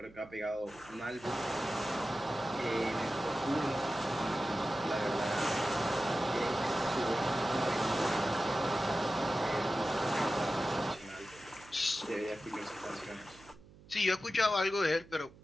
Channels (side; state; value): right; noise; hum, 22 dB below the sound